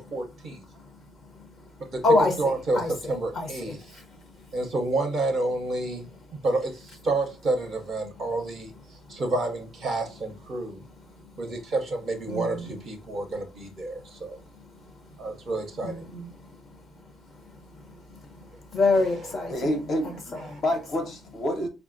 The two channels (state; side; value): normal; both; correlation 0.74